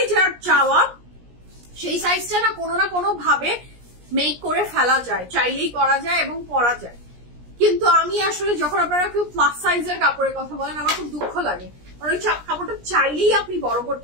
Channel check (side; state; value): left; late; 17 ms